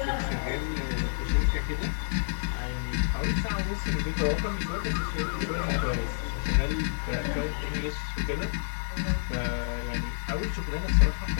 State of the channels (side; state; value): right; silent; 59 dB below the other